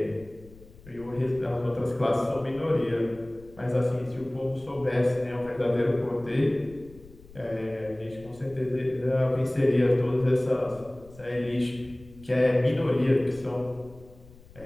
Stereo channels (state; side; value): noise; left; rumble, 22 dB below the sound